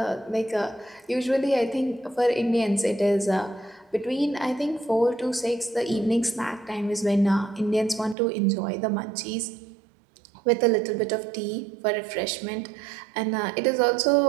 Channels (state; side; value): drops out; left; at 8.2 s